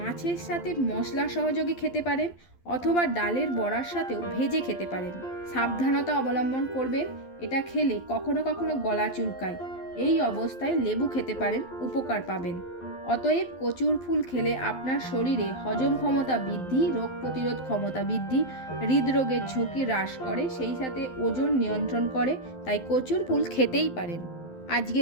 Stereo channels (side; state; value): right; late; 12 ms